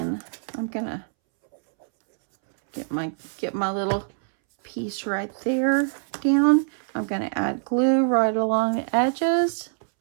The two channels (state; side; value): silent; left; 62 dB below the other